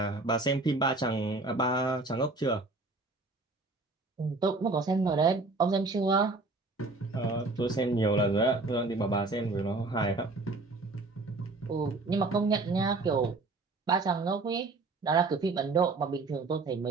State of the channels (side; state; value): left; quieter; 3.4 dB